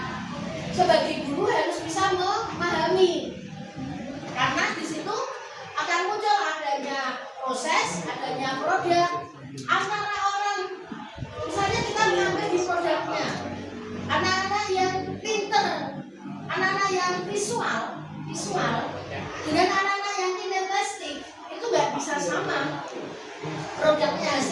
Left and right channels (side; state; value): both; identical; correlation 1.00